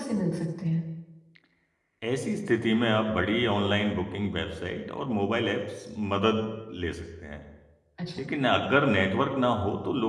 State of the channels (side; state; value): both; identical; correlation 1.00